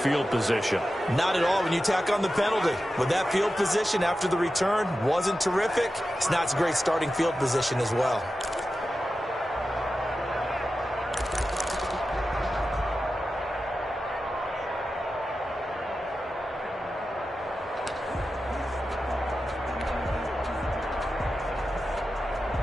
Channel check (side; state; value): both; normal; correlation 0.92